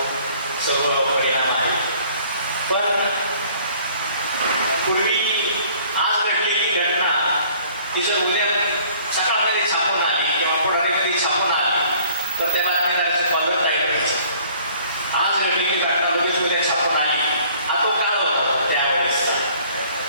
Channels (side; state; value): both; inverted; correlation -0.55